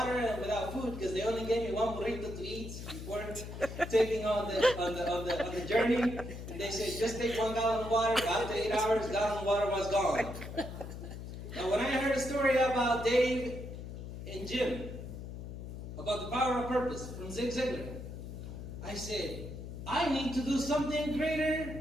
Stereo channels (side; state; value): left; noise; hum, 9 dB below the sound